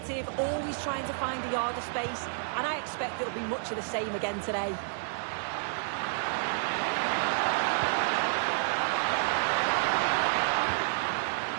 always trying to find the yard of space, and I expect it'll be much of the same again today.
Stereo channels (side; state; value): left; silent; 58 dB below the other